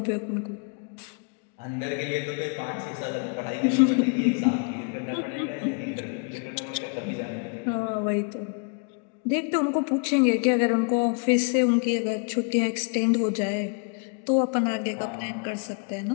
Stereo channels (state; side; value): quieter; right; 39.8 dB